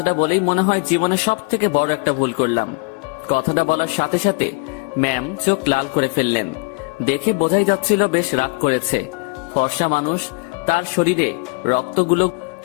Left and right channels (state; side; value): quieter; right; 29.6 dB